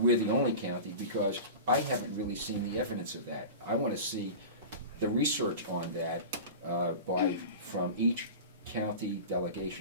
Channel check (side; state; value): both; inverted; correlation -0.32